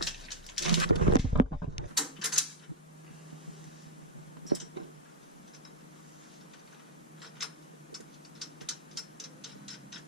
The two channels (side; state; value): both; normal; correlation -0.02